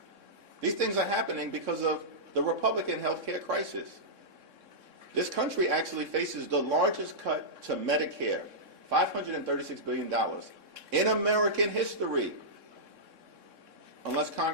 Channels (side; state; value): left; late; 3.6 ms